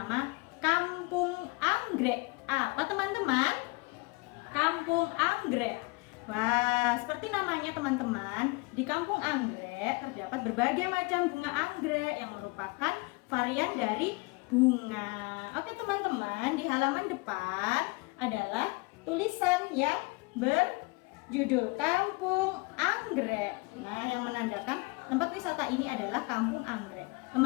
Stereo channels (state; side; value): quieter; right; 27.8 dB